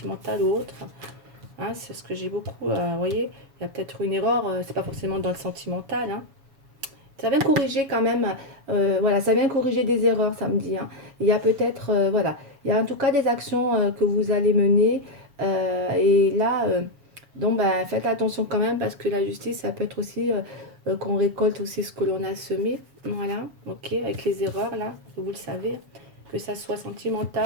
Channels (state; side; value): late; left; 7.0 ms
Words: ou autre. Hein, c'est ce que j'ai beaucoup. Vous voyez, il y a peut-être une erreur, c'est pas forcément dans le sentimental. Hein. Ça vient corriger quand même. Voilà, ça vient corriger des erreurs, ça me dit. Hein. Il y a peut-être, voilà, il y a en tout cas des actions que vous allez mener. Et là, donc, ben, faites attention quand même parce que la justice, ça peut être aussi qu'on récolte aussi ce que l'on a semé. Voilà, ok, avec les erreurs là, vous le savez, que ça soit